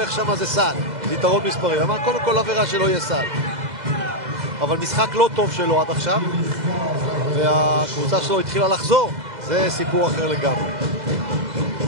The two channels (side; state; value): left; late; 2.0 ms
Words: שם זה סל. זה יתרון מספרי. אמר קודם כל עבירה שלא יהיה סל. אבל משחק לא טוב שלו עד עכשיו. והקבוצה שלו התחילה לחזור. זה סיפור אחר לגמרי.